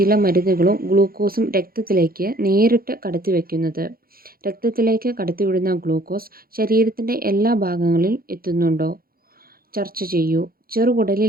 മരുന്നുകളും ഗ്ലൂക്കോസും രക്തത്തിലേക്ക് നേരിട്ട് കടത്തിവെക്കുന്നത്? രക്തത്തിലേക്ക് കടത്തിവിടുന്ന ഗ്ലൂക്കോസ് ശരീരത്തിൻ്റെ എല്ലാ ഭാഗങ്ങളിലും എത്തുന്നുണ്ടോ? ചർച്ച ചെയ്യൂ.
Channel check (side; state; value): left; late; 0.43 ms